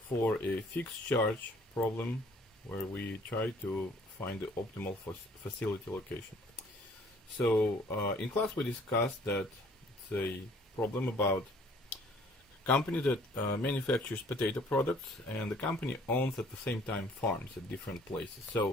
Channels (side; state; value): both; normal; correlation 0.57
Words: a fixed charge problem where we try to find the optimal facility location. So in class we discussed that it's a problem about a company that manufactures potato products, and the company owns at the same time farms at different places.